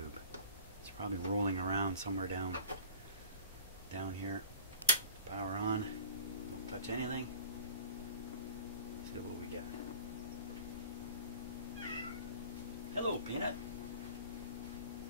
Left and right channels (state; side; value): inverted; both; correlation -0.40